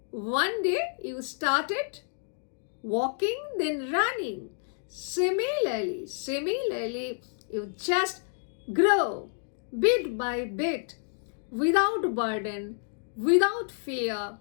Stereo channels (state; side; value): silent; right; digital silence